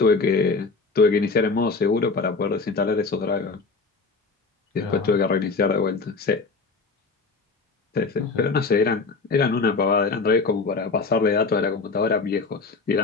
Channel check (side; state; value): right; quieter; 4.2 dB